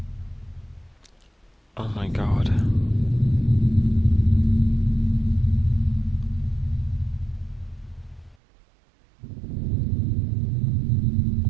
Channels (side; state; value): left; drops out; at 8.3 s